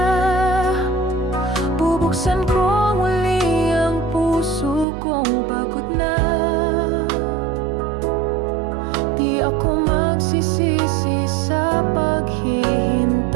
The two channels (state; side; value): drops out; left; at 4.9 s